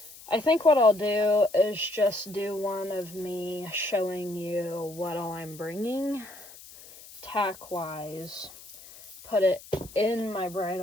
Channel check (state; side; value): noise; left; hiss, 19 dB below the sound